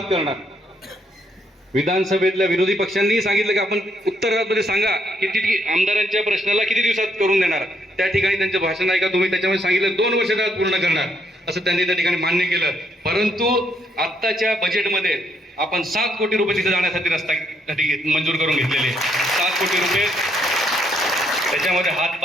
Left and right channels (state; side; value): normal; both; correlation 0.73